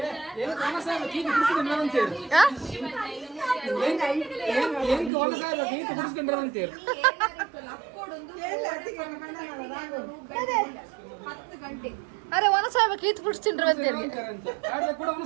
ಅರೆ ಒನಸಾಗ ಕೀತ್ ಬಿಡಿಸ್ತಿಂಡ್ರು ಅಂತೇಳಿ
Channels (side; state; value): left; drops out; at 5.1 s